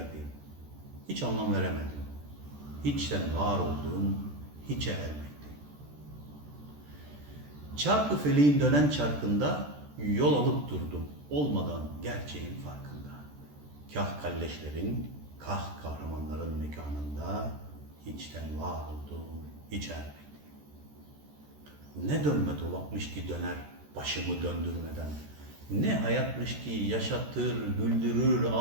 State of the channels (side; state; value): left; late; 14 ms